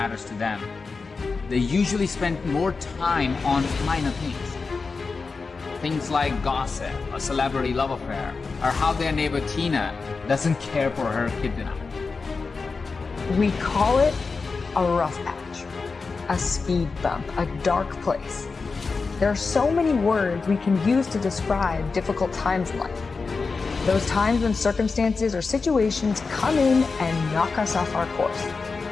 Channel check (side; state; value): right; quieter; 4.5 dB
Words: to them, they usually spend more time on minor things. Things like gossip, a celebrity love affair, or how their neighbor Tina doesn't care for her kid enough. We call it a rough patch, a speed bump, a dark place. There are so many words we can use to describe difficult times in life. Those times when circumstances or situations come in and knock us off our course.